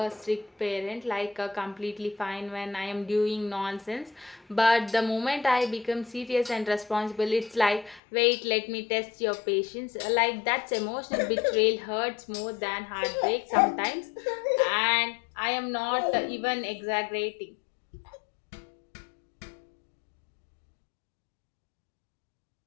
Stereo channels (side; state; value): right; drops out; at 8.0 s